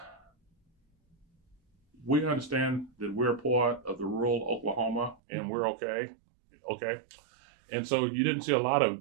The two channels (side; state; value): left; drops out; at 5.2 s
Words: we understand that we're part of the rural Oklahoma and we're okay. And so you didn't see a lot of